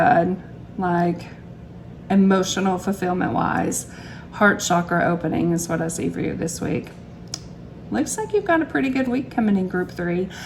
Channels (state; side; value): identical; both; correlation 1.00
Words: like emotional fulfillment wise, heart chakra opening is what I see for you this week. Looks like you've got a pretty good week coming in, group 3.